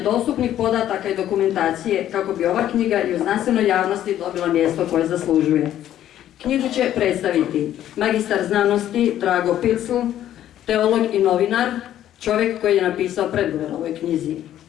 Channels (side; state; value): right; quieter; 11.8 dB